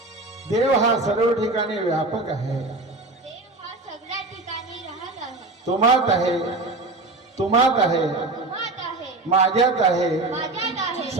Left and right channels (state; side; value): quieter; left; 3.1 dB